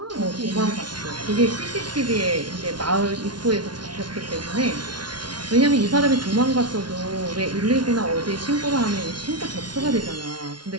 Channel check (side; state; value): left; late; 0.70 ms